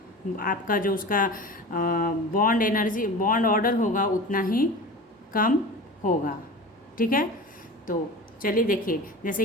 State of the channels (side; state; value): both; normal; correlation 0.34